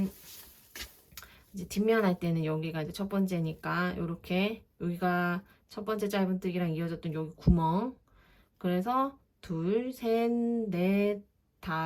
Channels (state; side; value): identical; both; correlation 1.00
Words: 이제 뒷면 할 때는 여기가 이제 첫 번째니까 요렇게 여기가 첫 번째 짧은뜨기랑 이어졌던 여기 구멍 그래서 둘, 셋, 넷,